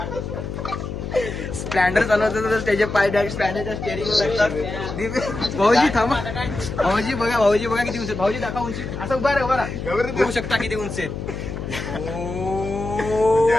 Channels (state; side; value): noise; left; hum, 6 dB below the sound